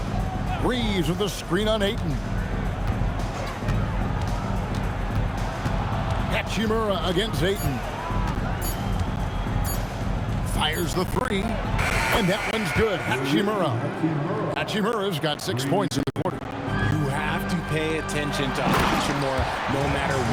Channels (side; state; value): both; identical; correlation 1.00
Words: Reeves with the screen on Ayton. Hachimura against Ayton. Fires the three. And that one's good. Hachimura's got 6 points in the quarter. You have to pay attention to Hachimura no matter